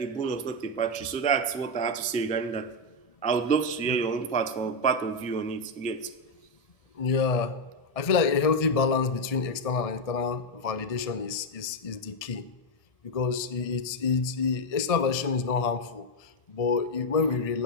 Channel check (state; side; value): late; right; 1.6 ms